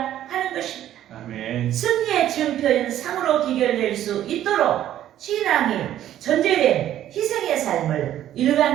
하는 것입니다. 아멘. 승리의 증표인 상으로 기결될 수 있도록 신앙이 전제된 희생의 삶을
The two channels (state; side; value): quieter; left; 12.0 dB